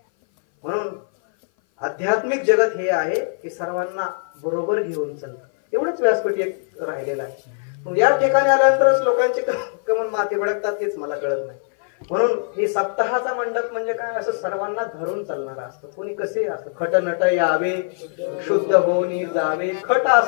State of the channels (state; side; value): silent; right; 58 dB below the other